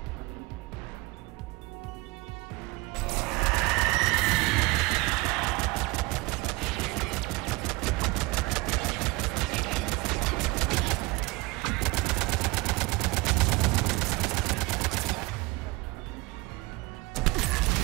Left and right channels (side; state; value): left; quieter; 22.7 dB